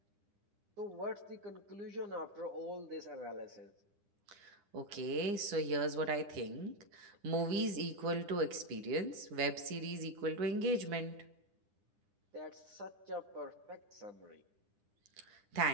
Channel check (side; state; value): left; late; 9.9 ms